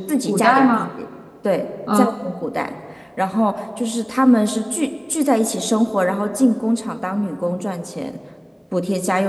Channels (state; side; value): identical; both; correlation 1.00